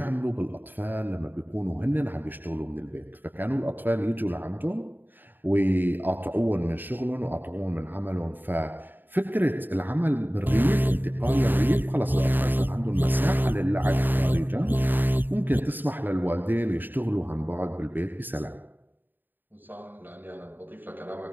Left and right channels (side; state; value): left; late; 0.091 ms